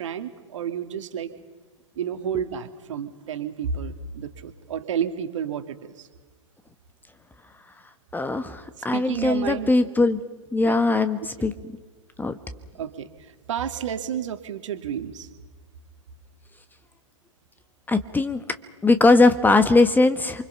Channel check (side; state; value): both; normal; correlation 0.70